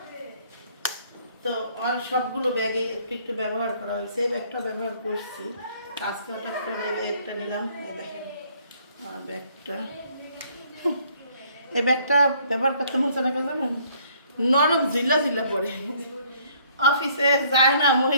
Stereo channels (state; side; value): inverted; both; correlation -0.62